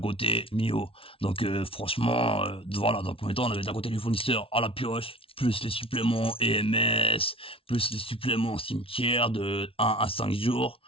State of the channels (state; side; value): late; right; 0.26 ms